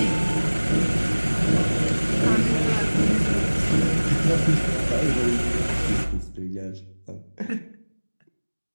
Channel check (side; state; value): both; inverted; correlation -1.00